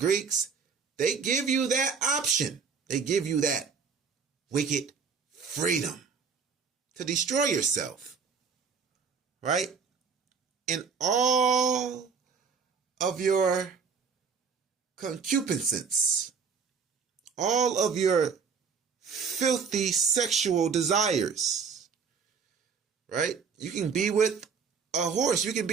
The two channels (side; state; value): left; quieter; 5.8 dB